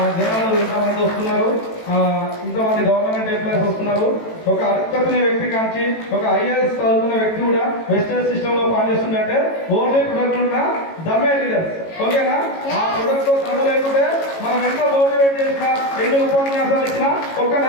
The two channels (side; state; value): right; late; 18 ms